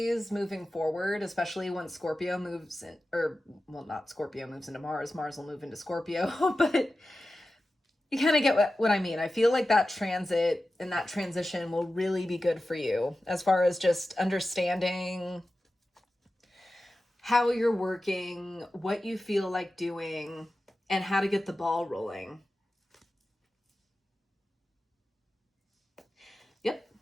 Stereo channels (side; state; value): both; normal; correlation 0.94